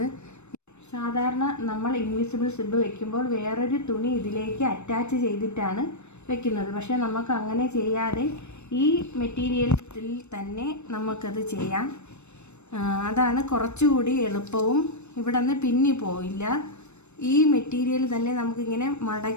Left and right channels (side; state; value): right; late; 0.82 ms